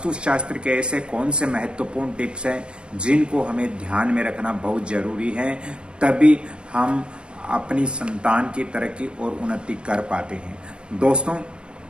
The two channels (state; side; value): late; left; 0.054 ms